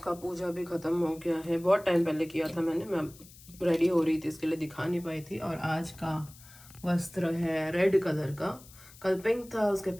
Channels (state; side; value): noise; left; hiss, 21 dB below the sound